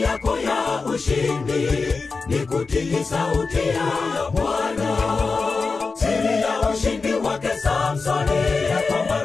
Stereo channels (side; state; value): right; quieter; 4.3 dB